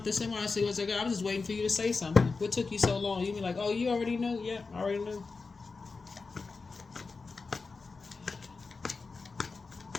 somebody says, I was just waiting for you to say something. What took you so long? You be like, oh, you already know? Yeah, I already knew.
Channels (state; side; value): quieter; right; 4.3 dB